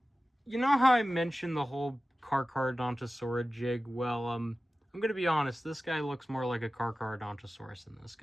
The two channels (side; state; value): both; normal; correlation 0.95